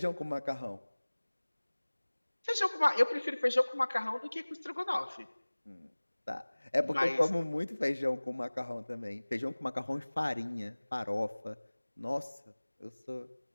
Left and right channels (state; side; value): inverted; both; correlation -1.00